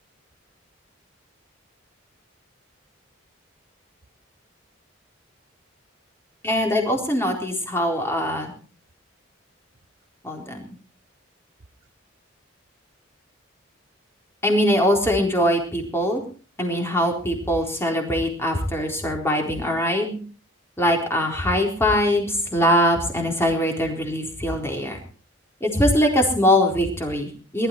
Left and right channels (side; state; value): both; normal; correlation 0.50